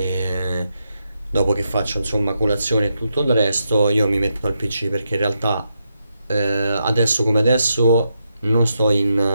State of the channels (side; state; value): both; inverted; correlation -0.83